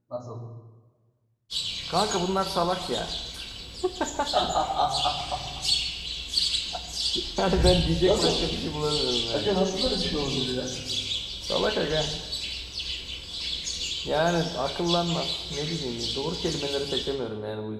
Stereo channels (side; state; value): both; identical; correlation 1.00